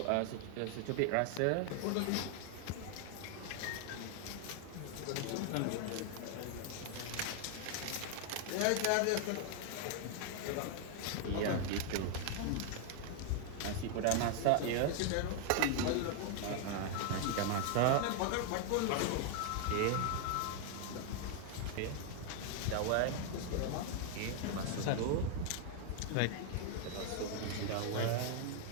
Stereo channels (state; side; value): different; both; correlation 0.00